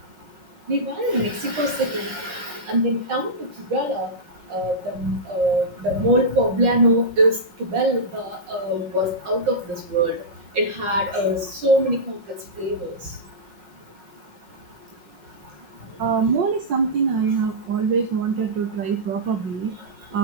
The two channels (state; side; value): late; left; 5.5 ms